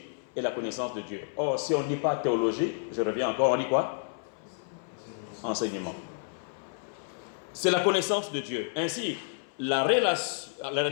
est la connaissance de Dieu. Or, si on ne dit pas théologie, je reviens encore, on dit quoi? Enseignement. C'est la connaissance de Dieu. Ainsi, la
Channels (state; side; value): silent; right; 58 dB below the other